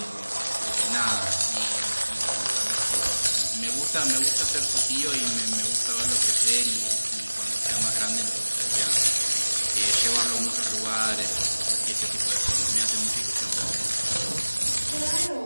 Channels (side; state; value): both; inverted; correlation -1.00